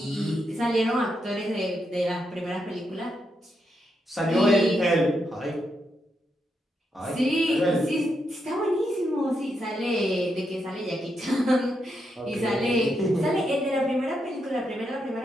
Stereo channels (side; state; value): both; normal; correlation 0.82